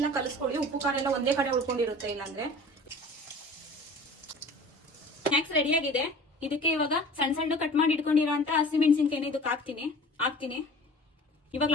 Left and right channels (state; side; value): normal; both; correlation 0.43